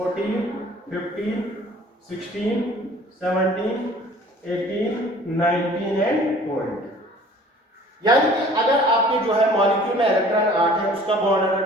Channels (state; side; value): normal; both; correlation 0.50